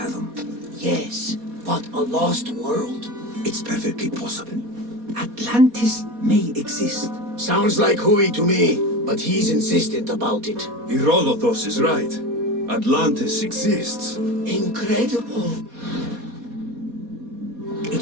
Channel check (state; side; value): late; left; 4.2 ms